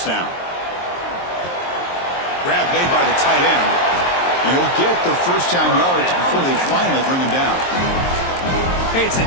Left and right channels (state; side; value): late; right; 23 ms